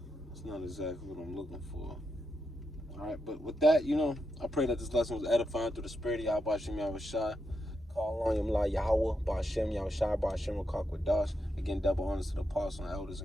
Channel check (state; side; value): normal; both; correlation 0.84